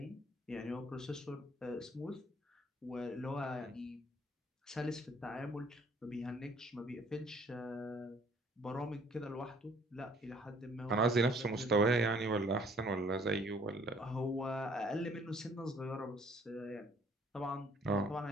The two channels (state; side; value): normal; both; correlation 0.59